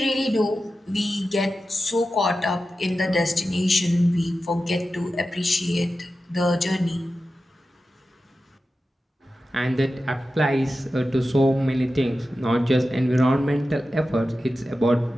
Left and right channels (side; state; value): both; normal; correlation 0.92